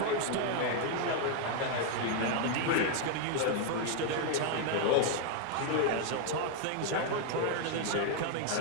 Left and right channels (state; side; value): different; both; correlation 0.00